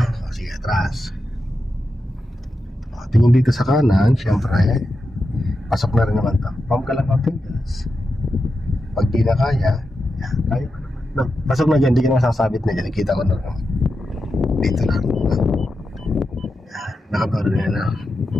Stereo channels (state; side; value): normal; both; correlation 0.89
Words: O, sige, atras. O, tingin dito sa kanan, syempre, pasok na rin naman ito. Pump ka lang ng gas. Pag di na kaya, yan, kaya pa naman. No, pasok na dyan, di ka na masasabit na dyan. Kita ko na naman. Dito lang. Yan, nakabaro na yan na.